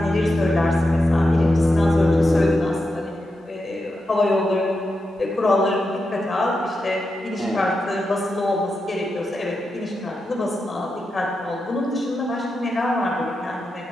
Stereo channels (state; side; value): normal; both; correlation 0.88